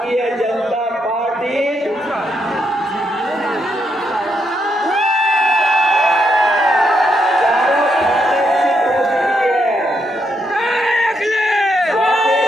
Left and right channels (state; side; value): normal; both; correlation 0.78